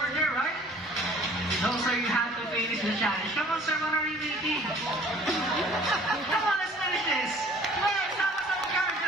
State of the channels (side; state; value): both; normal; correlation 0.52